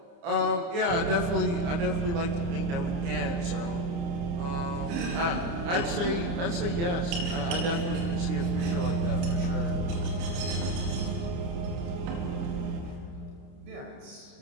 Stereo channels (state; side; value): late; left; 30 ms